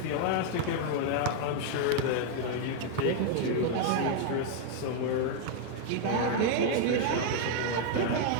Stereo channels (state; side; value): different; both; correlation 0.00